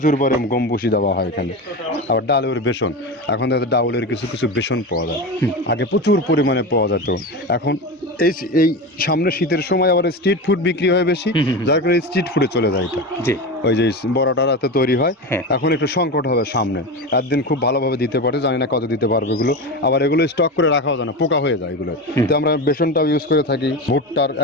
পরিমাণে গম ভুসি দেওয়া হয় এখানে। আবার ডালের বেসন, এখন তো ডাউলের কিছু কিছু বেসন পাওয়া যায়, আগে প্রচুর পরিমাণে পাওয়া যেত। এখন এই সামনে শীতের সময় আবার স্ট্রিট ফুড বিক্রি হয় বেশি, যার কারণে স্ট্রিট ফুডে চলে যায় এটা। জি। ওই যে বড়টা রাতে তৈরি হয়, হ্যাঁ। এখন একটু সংকট হবে সামনে। একদিন খুব ভালোভাবে দিতে পারে, জানি না কত দিতে পারবে এগুলো। আবার এগুলো স্টক করে রাখাও যায় না, পোকা হয়ে যায় এগুলো। তো আমরা বেসনটাও ইউজ করে থাকি। ভুট্টার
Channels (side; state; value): both; normal; correlation 0.23